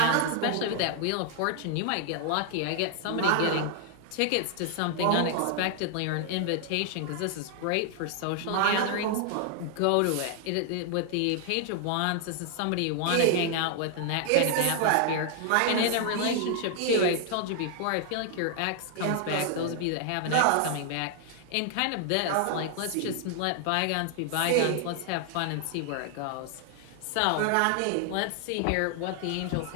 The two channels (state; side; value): different; both; correlation 0.00